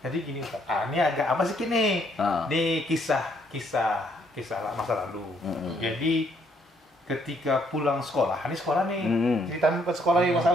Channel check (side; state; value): both; normal; correlation 0.69